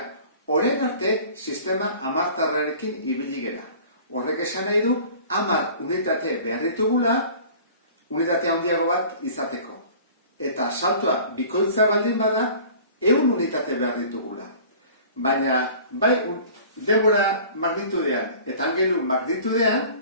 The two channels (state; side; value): inverted; both; correlation -0.45